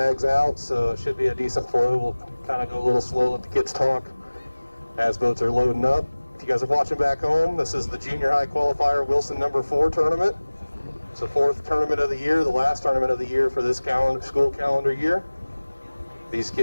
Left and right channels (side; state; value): both; inverted; correlation -1.00